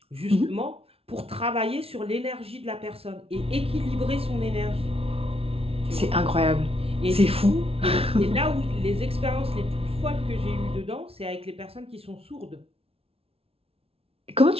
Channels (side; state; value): left; late; 0.28 ms